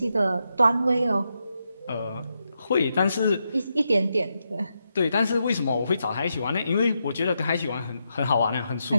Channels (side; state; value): both; inverted; correlation -0.84